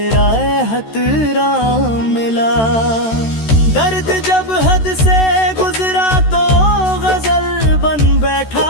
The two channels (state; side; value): late; right; 13 ms